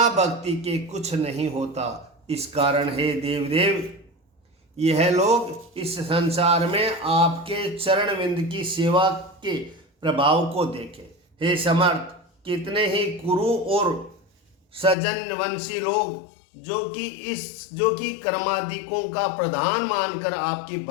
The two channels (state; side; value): drops out; right; at 15.0 s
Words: भक्ति के कुछ नहीं होता। इस कारण हे देवदेव, यह लोग इस संसार में आपके चरण विंद की सेवा के प्रभाव को देखें। हे समर्थ, कितने ही कुरु और सजनवंशी लोग जो कि कर्मादिकों का प्रधान मानकर आपकी